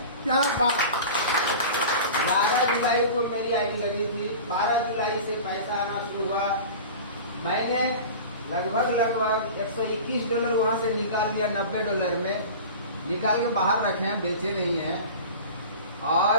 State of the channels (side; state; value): both; inverted; correlation -0.35